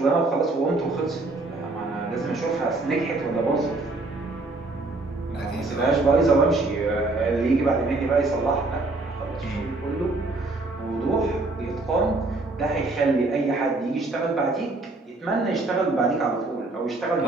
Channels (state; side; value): quieter; left; 3.2 dB